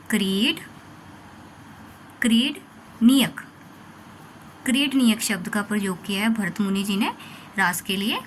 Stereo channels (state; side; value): identical; both; correlation 1.00